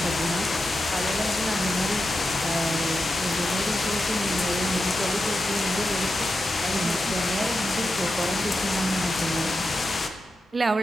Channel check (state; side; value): normal; both; correlation 0.89